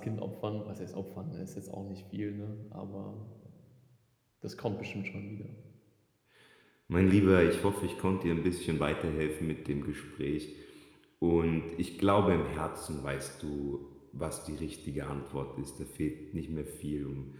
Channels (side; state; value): both; identical; correlation 1.00